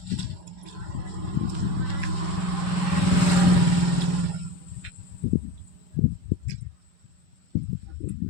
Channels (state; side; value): late; right; 5.1 ms